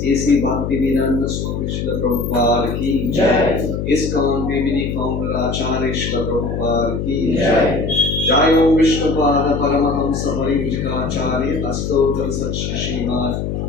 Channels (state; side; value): noise; left; hum, 3 dB below the sound